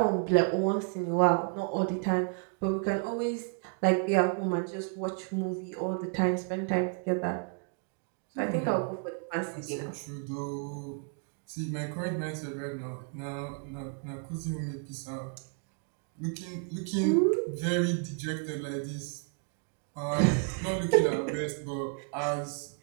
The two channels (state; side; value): quieter; left; 38.6 dB